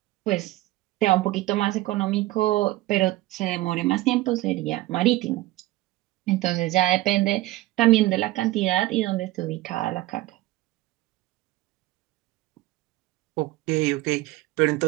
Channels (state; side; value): quieter; left; 17.5 dB